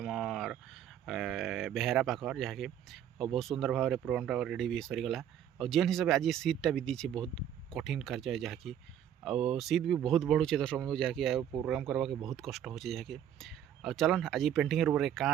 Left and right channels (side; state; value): left; quieter; 9.9 dB